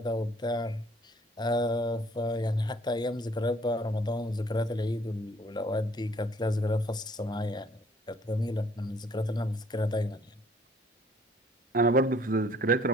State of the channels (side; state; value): both; normal; correlation 0.60